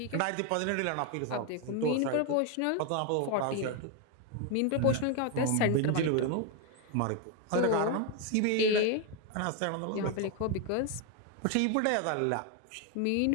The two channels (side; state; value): both; different; correlation 0.01